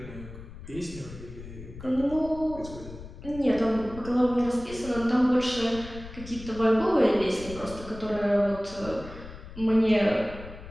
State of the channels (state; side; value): noise; left; rumble, 14 dB below the sound